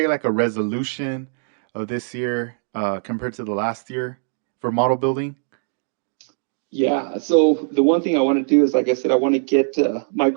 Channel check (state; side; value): silent; left; digital silence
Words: like a resolution of this year compared to the last year for model building. Yeah. So the one thing I want to do is, like I said, I want to get. My